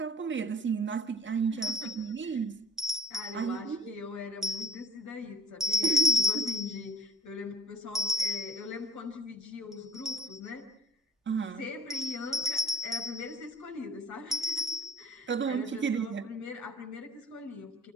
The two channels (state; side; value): normal; both; correlation 0.53